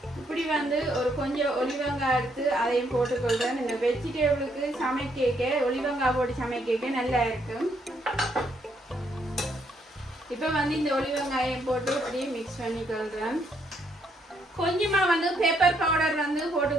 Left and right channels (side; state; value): both; normal; correlation 0.72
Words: இப்படி வந்து ஒரு கொஞ்சம் ஒலிவங்காய் எடுத்து அதையும் போட்டுக்கொள்றேன். இந்த வெஜிடபிளுக்கு சமைக்க ஒலிவங்காய் போட்டு சமைக்க நல்லா இருக்கும். இப்போ வந்து இந்த ஒலிவங்காயம் போட்டு அப்படியே மிக்ஸ் பண்ணிக்கொள்றேன். கொஞ்சமா வந்து பெப்பர் பவுடர் வந்து